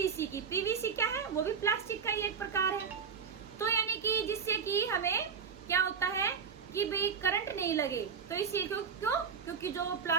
की। पीवीसी क्या है? वो भी प्लास्टिक का ही एक प्रकार है। तो यानी कि जिससे कि हमें क्या होता है कि भाई करंट नहीं लगे, तो इसलिए क्यों? क्योंकि जो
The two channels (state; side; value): quieter; left; 6.4 dB